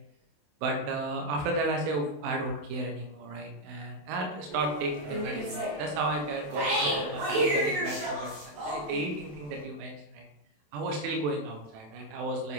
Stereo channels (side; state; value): left; late; 27 ms